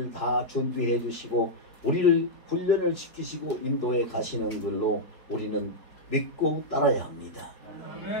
다 준비해 주시고 우리를 훈련을 시키시고 인도해 가시는 걸로 우리는 믿고 따라야 합니다.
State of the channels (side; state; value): right; late; 4.7 ms